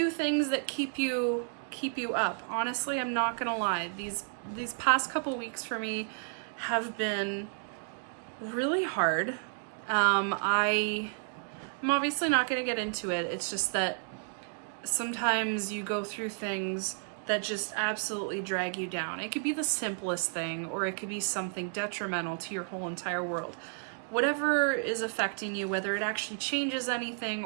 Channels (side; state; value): left; silent; 57 dB below the other